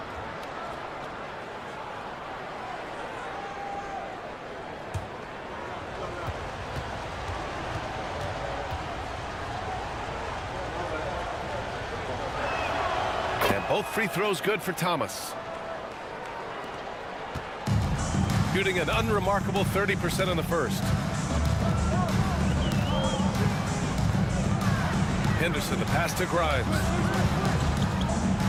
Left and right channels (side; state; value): both; identical; correlation 1.00